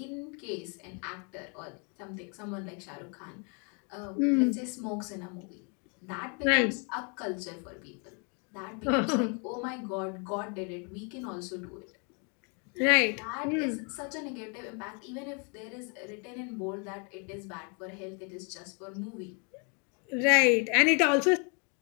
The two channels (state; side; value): quieter; right; 36.4 dB